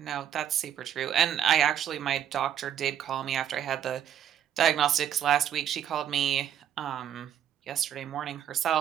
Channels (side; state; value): left; quieter; 10.0 dB